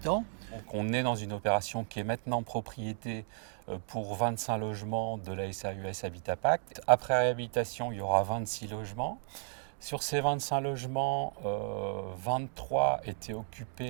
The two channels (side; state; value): left; silent; 55 dB below the other